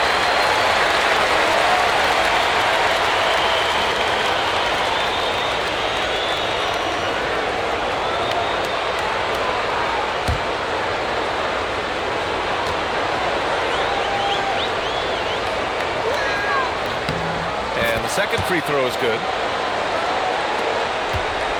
Second free throw is good.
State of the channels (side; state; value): both; identical; correlation 1.00